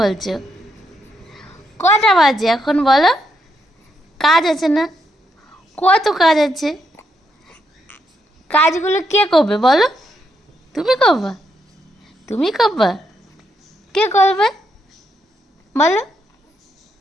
কটা বাজে এখন বলো? কাজ আছে না? কত কাজ আছে। কাজগুলো কে করবে বলো? তুমি করবা? তুমি করবা? কে করবে বলো?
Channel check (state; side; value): normal; both; correlation 0.79